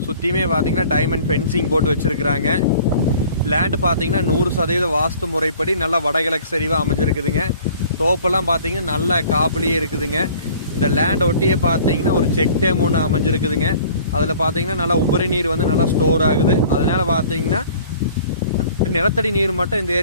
சுற்றியுமே பார்த்தீங்கன்னா டைமண்ட் ஃபென்சிங் போட்டு வச்சுருக்குறாங்க. லேண்டு பார்த்தீங்கன்னா 100% வாஸ்து முறைப்படி நல்லா வடகிழக்கு சரிவாக அமைஞ்சிருக்குதுங்க. தோப்பெல்லாம் பார்த்தீங்கன்னா நல்ல காப்புலேயே இருக்குதுங்க. இந்த லேண்ட் ஒட்டியே பார்த்தீங்கன்னா ஒரு செக் டேம் ஒன்று அமைஞ்சிருக்குதுங்க. அதில் பார்த்தீங்கன்னா நல்லா உபரி நீர் வந்து நல்லா ஸ்டோர் ஆகுது. அதனால் பார்த்தீங்கன்னா நிலத்தடி நீர் மட்டும் இந்த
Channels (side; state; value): both; inverted; correlation -0.50